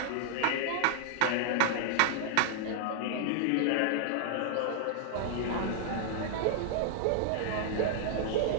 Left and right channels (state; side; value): different; both; correlation 0.00